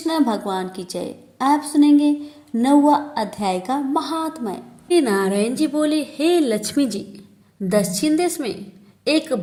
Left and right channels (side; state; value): both; identical; correlation 1.00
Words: भगवान की जय। आप सुनेंगे 9वां अध्याय का महात्म्य। श्री नारायण जी बोले, हे लक्ष्मी जी, दक्षिण देश में एक